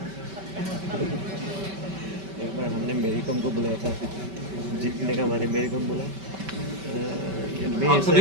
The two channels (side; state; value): left; late; 5.2 ms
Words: एक बार हमने मेरी कॉम को बुलाया था जीतने का हमारे मेरी कॉम बोला आप